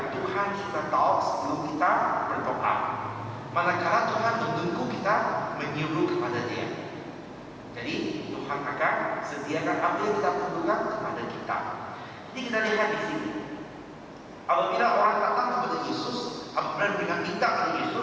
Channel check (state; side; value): identical; both; correlation 1.00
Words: Tuhan sudah tahu sebelum kita berdoa. Manakala Tuhan menunggu kita menyuruh kepada Dia. Jadi Tuhan akan sediakan apa yang kita perlukan kepada kita. Jadi kita lihat di sini. Apabila orang datang kepada Yesus, apabila mereka minta kepada